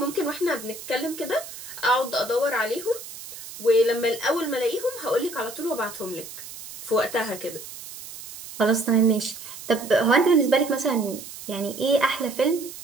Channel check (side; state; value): right; noise; hiss, 13 dB below the sound